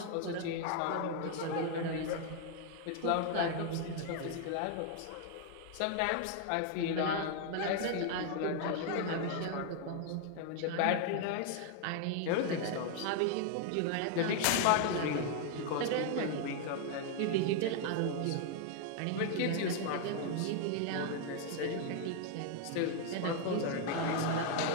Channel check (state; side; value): different; both; correlation 0.00